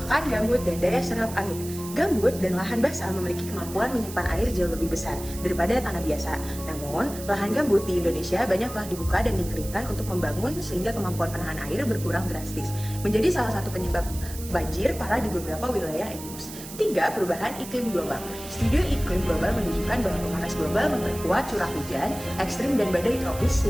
gambut dan daya serap air. Gambut dan lahan basah memiliki kemampuan menyimpan air jauh lebih besar daripada tanah biasa. Namun, lahan gambut di Indonesia banyak telah dibuka dan dikeringkan untuk membangun sehingga kemampuan penahan air berkurang drastis, menjadi salah satu penyebab banjir parah di beberapa wilayah endemik. 3. Perubahan iklim global. Studi iklim global menunjukkan bahwa pemanas global memperkuat curah hujan ekstrim dan badai tropis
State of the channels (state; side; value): noise; right; hiss, 13 dB below the sound